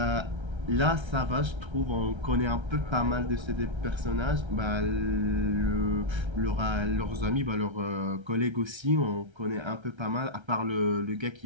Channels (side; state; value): left; late; 1.3 ms